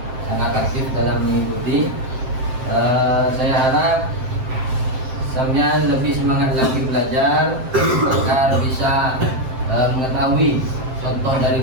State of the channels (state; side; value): late; left; 7.7 ms